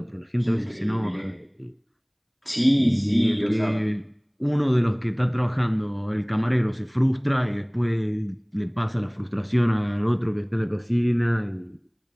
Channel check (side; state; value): both; identical; correlation 1.00